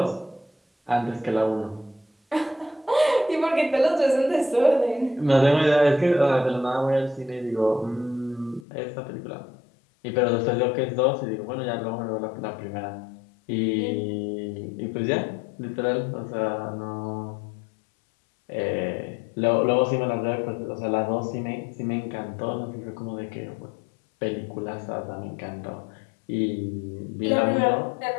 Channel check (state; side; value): drops out; right; at 8.7 s